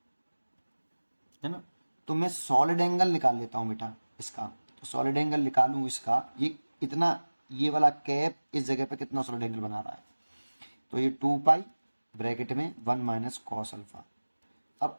है ना। तो मैं सॉलिड एंगल निकाल लेता हूं बेटा इसका, तो सॉलिड एंगल निकालूं इसका, ये इतना, ये वाला कैप इस जगह पे कितना सॉलिड एंगल बना रहा है, तो ये 2 पाई ब्रैकेट में 1 - cos अल्फा। अब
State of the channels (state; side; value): inverted; both; correlation -1.00